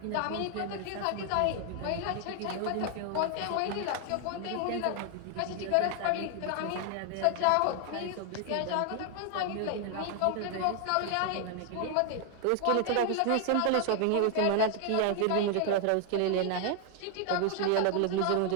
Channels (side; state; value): both; different; correlation 0.00